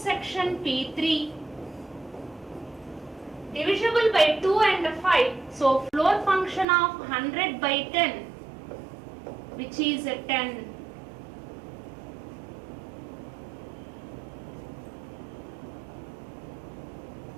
P3 divisible by 2 and 5. So floor function of 100 by 10, which is 10.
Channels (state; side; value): drops out; left; at 6.7 s